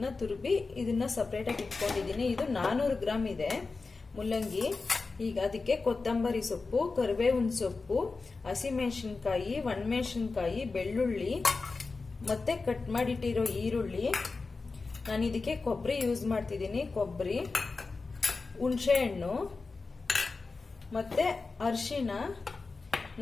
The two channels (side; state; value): right; quieter; 4.0 dB